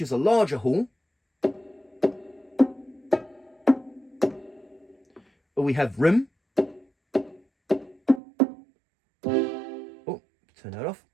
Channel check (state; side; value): drops out; left; at 8.2 s